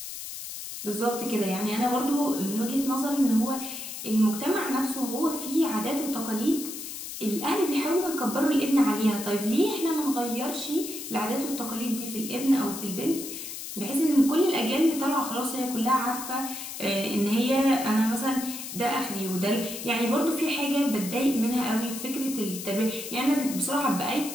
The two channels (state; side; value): noise; left; hiss, 9 dB below the sound